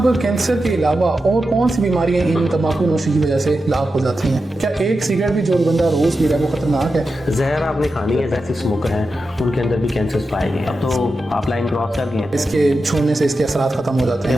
कैंसर के अलावा और कौन सी बीमारियां इन तंबाकू नोशी की वजह से लाभ हो जाती हैं? क्या एक सिगरेट भी जो बंदा रोज पी रहा है वो खतरनाक है? जहर आपने खानी है, जैसे स्मोकर हैं उनके अंदर भी कैंसर पाए गए। अब तो आप लाइन क्रॉस कर गए, इसके छोड़ने से इसके असरात खत्म हो जाते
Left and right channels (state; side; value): normal; both; correlation 0.90